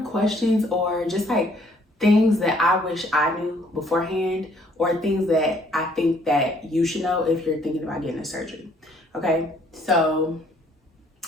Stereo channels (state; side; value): normal; both; correlation 0.63